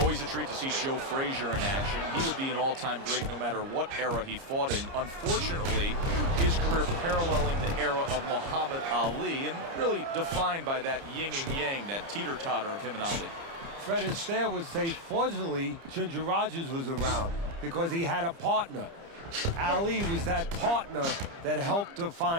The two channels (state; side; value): late; left; 30 ms